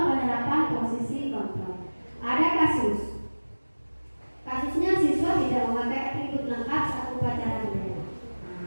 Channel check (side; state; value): both; inverted; correlation -1.00